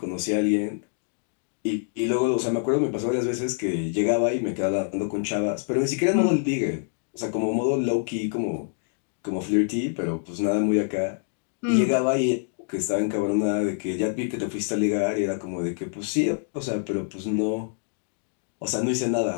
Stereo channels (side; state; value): right; silent; digital silence